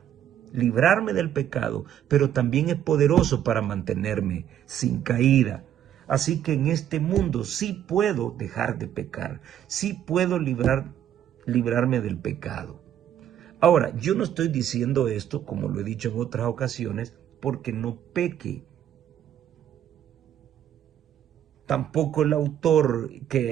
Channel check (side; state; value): left; quieter; 10.4 dB